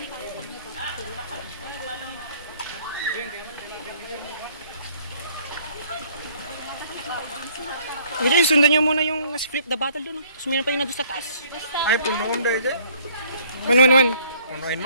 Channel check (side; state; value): both; inverted; correlation -0.60